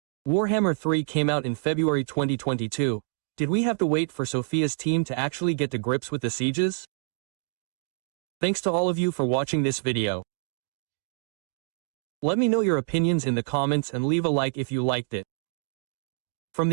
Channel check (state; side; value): silent; left; 60 dB below the other